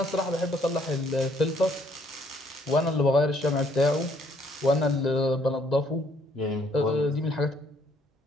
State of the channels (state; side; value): normal; both; correlation 0.65